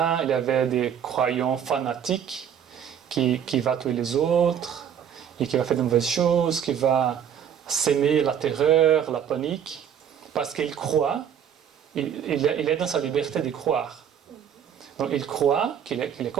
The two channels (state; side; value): quieter; left; 8.6 dB